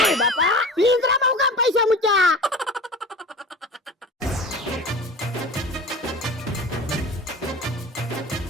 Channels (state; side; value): normal; both; correlation 0.35